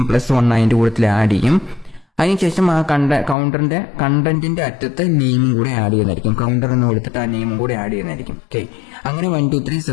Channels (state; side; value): drops out; right; at 3.4 s